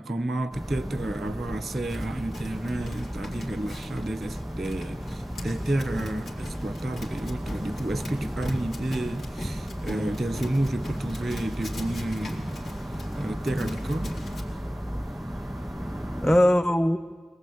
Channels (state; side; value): normal; both; correlation 0.96